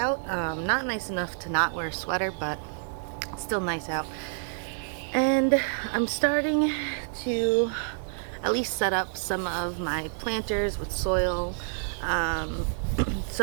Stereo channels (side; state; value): left; silent; 59 dB below the other